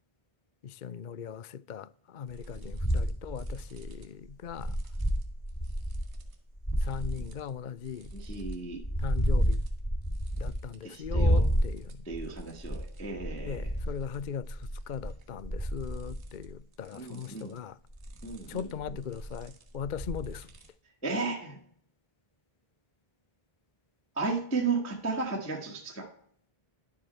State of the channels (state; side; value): late; right; 2.1 ms